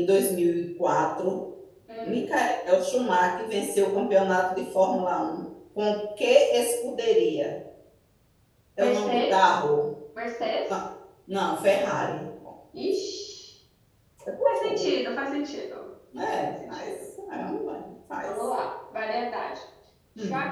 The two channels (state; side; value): identical; both; correlation 1.00